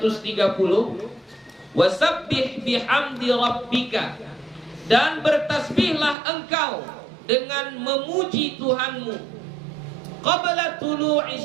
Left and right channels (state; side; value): drops out; left; at 6.2 s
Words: Wasabbih bihamdi rabbika, dan bertasbihlah engkau dengan memuji Tuhanmu qabla tulu'i